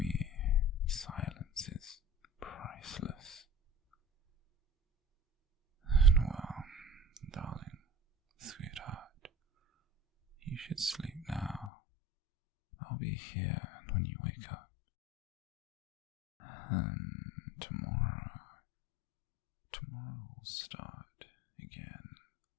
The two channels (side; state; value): right; drops out; at 11.7 s